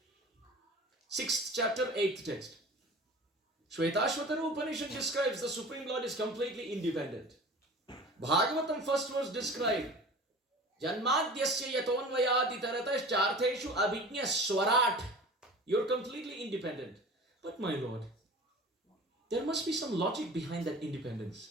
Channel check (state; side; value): normal; both; correlation 0.40